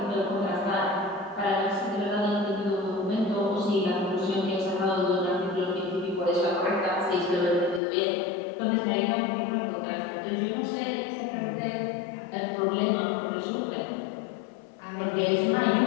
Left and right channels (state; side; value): drops out; right; at 7.8 s